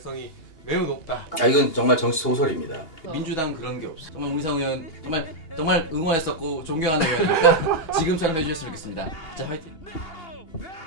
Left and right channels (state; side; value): late; right; 2.8 ms